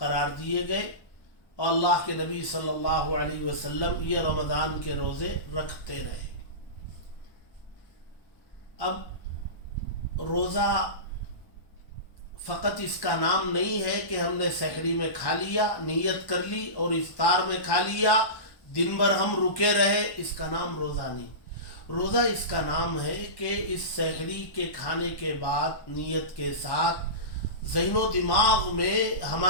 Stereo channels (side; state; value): right; late; 1.1 ms